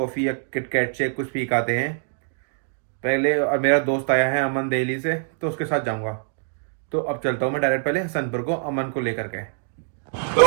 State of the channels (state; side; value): silent; left; digital silence